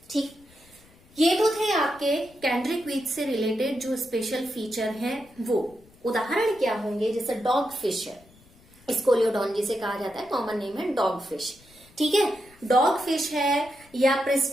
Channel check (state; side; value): noise; left; rumble, 27 dB below the sound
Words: ठीक, ये तो थे आपके कैंड्रिक वीच से रिलेटेड जो स्पेशल फीचर हैं वो। उदाहरण क्या होंगे, जैसे डॉग फिश है, स्कोलियोडॉन जिसे कहा जाता है, कॉमन नेम है डॉग फिश। ठीक है, डॉग फिश है, या